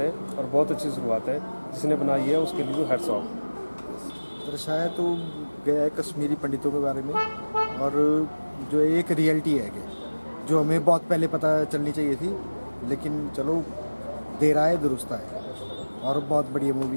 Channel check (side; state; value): both; inverted; correlation -1.00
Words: है और बहुत अच्छी शुरुआत है। जिसने बनाई है उसके लिए तो हैट्स ऑफ। दर्शाया तो गया है कश्मीरी पंडितों के बारे में और जो एक रियलिटी है कि जो हमें बहुत पहले पता चलनी चाहिए थी, लेकिन चलो देर आए दुरुस्त आए और बहुत बढ़िया